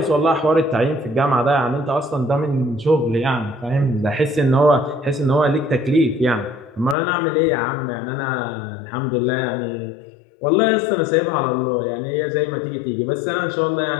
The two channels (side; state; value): right; drops out; at 7.0 s